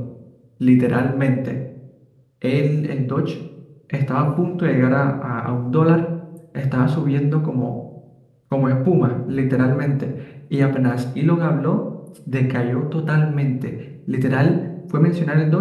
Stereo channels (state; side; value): identical; both; correlation 1.00